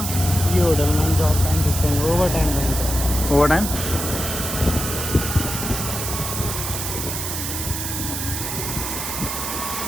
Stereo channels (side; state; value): right; noise; hiss, 4 dB below the sound